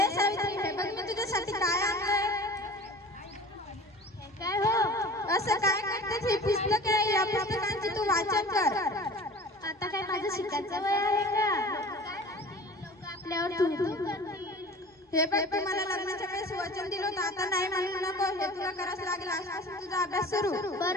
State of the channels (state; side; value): normal; both; correlation 0.41